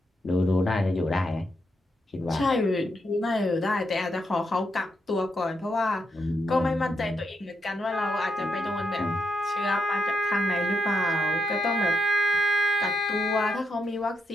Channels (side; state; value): both; normal; correlation 0.81